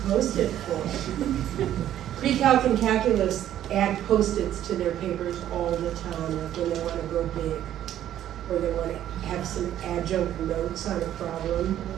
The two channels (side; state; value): left; quieter; 11.7 dB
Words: Post-it for? Pre-calc and calculus add Post-its to their papers all the time, like when they want to go big, or they want to have some adjunct notes on a problem.